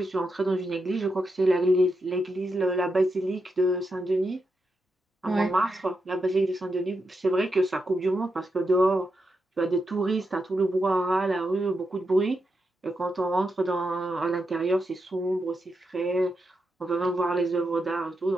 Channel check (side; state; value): both; normal; correlation 0.85